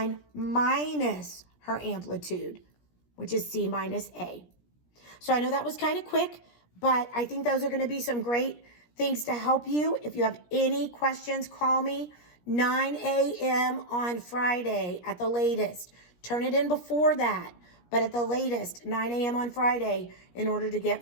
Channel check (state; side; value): late; right; 17 ms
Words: minus her amplitude, which is C minus A. So I know that was kind of quick, but I think those are going to be some great things to help you. If you have any questions, call me 9 a.m. on Friday at the latest. Turn it in before that, but at the latest, 9 a.m. on Friday in order to